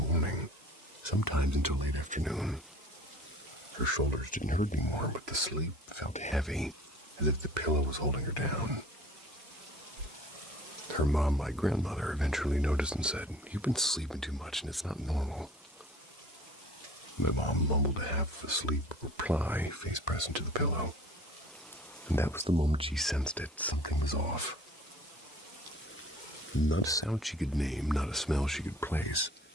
sometimes until late afternoon. Her shoulders didn't hurt anymore, but the sleep felt heavy, as if the pillow was holding her down. Her mom, my grandmother, eventually noticed and said, "You've been sleeping too much and it's not normal." My mom mumbled a half-asleep reply, face pressed into the pillow. And that was the moment she sensed it. Something was off. Not a sound she could name, not a smell she could place.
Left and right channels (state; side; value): normal; both; correlation 0.48